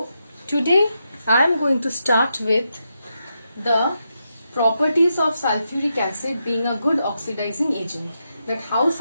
today I am going to start with the properties of sulfuric acid being a good oxidizing agent. That how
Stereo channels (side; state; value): both; inverted; correlation -0.85